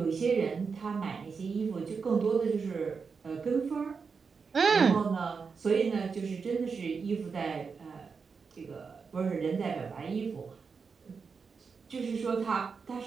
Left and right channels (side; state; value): left; quieter; 5.4 dB